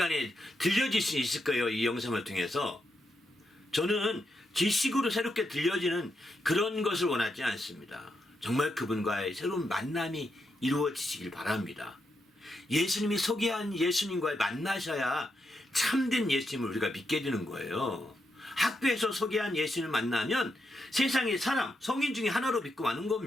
들려질 수 있을 거예요. 이 영상을 통해서. 저는 지식으로 새롭게 들려지는 그런 것을 원하지 않습니다. 정말 그분과의 새로운 만남이 이루어지시길 바랍니다. 예수님이 소개한 예수님과의 만나셔야 참된 예수님을 우리가 믿게 되는 거예요. 학교에서 소개한 예수님을 만나면 세상의 성인 중에 하나로 믿고 마는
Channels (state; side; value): normal; both; correlation 0.83